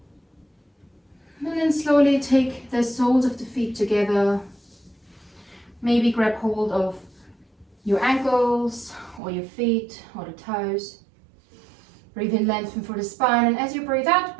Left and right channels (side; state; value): left; drops out; at 9.2 s